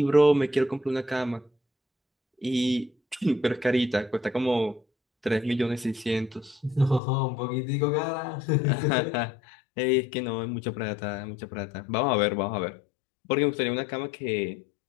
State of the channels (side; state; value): right; drops out; at 7.0 s